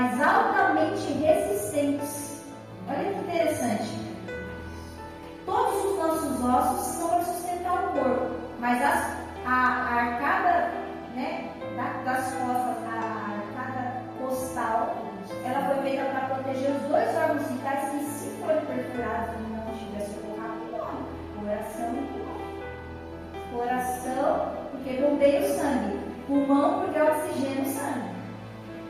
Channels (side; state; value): both; identical; correlation 1.00